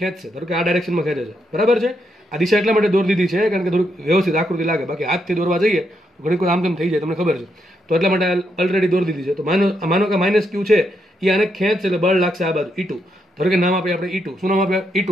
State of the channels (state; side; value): normal; both; correlation 0.79